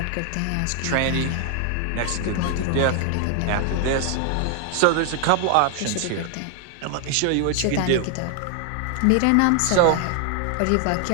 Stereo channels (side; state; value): both; different; correlation 0.00